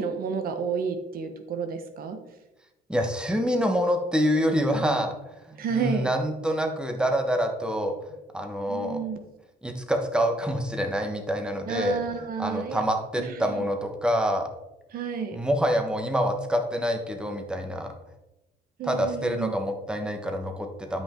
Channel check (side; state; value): both; normal; correlation 0.71